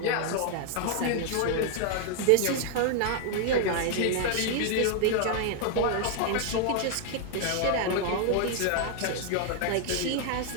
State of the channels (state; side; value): different; both; correlation 0.00